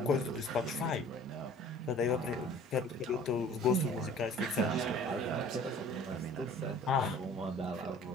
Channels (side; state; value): both; normal; correlation 0.49